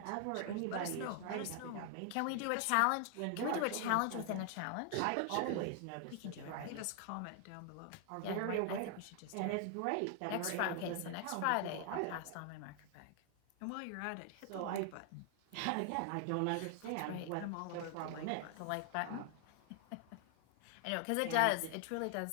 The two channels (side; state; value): both; different; correlation 0.00